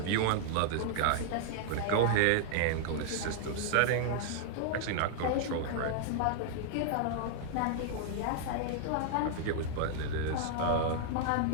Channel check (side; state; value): both; different; correlation 0.00